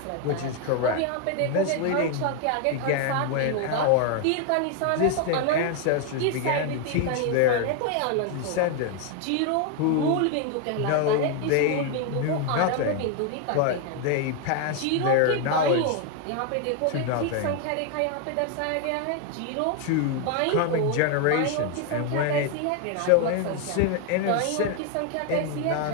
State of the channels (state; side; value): different; both; correlation 0.01